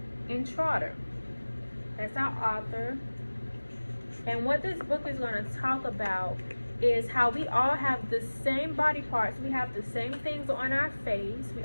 Intrater. That's our author. And what this book is going to talk about is how we all have the same body parts. We have the same things on our face. We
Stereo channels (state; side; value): inverted; both; correlation -1.00